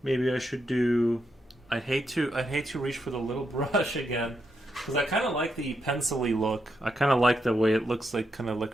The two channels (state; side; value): normal; both; correlation 0.82